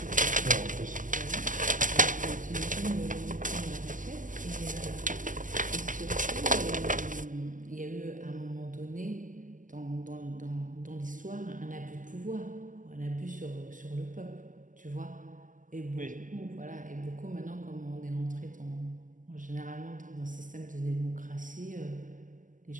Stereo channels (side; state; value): left; late; 0.38 ms